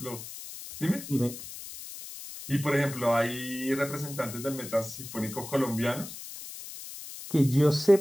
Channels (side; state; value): left; noise; hiss, 12 dB below the sound